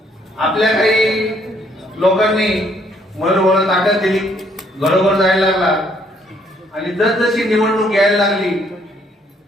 आपल्या काही लोकांनी मयूर भाऊला ताकद दिली, घरोघर जायला लागला आणि जसजशी निवडणूक यायला लागली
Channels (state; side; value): normal; both; correlation 0.67